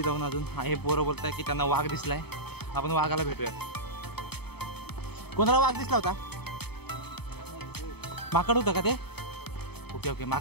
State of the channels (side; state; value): right; late; 0.97 ms